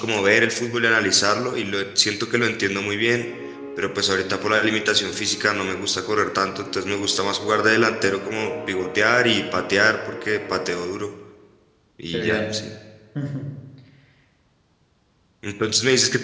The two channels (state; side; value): identical; both; correlation 1.00